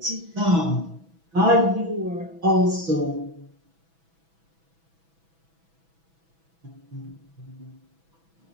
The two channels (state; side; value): late; left; 6.1 ms